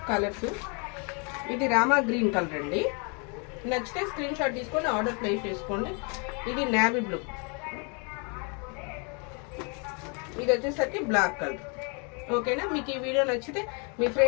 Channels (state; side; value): quieter; right; 35.3 dB